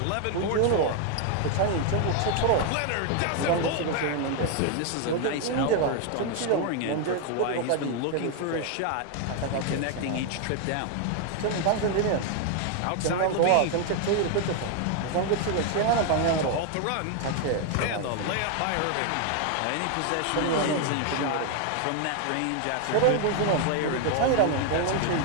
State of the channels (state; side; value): different; both; correlation 0.00